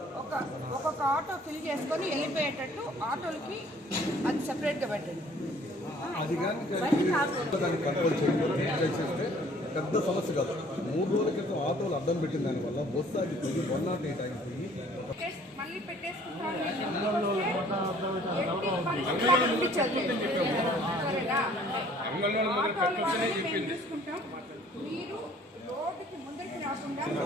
ఒక్కొక్క ఆటో ఫిల్ చేసుకొని వెళ్ళిపోయేటట్టు ఆటోలకి అది సెపరేట్గా పెట్టండి. పెద్ద సమస్య కాదు. 3 రోజుల క్రితం ఆటోలు అడ్డం పెట్టిన దానివల్ల బస్సు ఆగిపోయి 108 అయిపోయి మళ్ళీ చూసుకుంటాం. మీరు రోడ్డుకి ముందరికి రాకుండా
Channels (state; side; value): normal; both; correlation 0.56